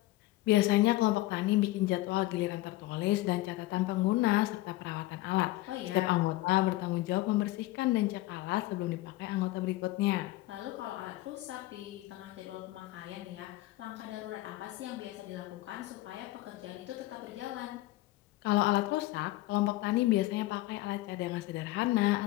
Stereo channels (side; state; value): right; quieter; 17.6 dB